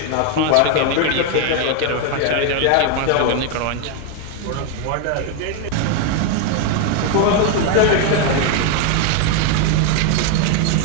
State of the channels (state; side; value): different; both; correlation 0.01